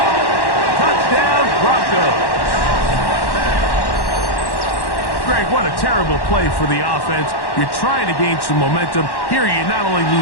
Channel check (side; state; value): right; late; 1.1 ms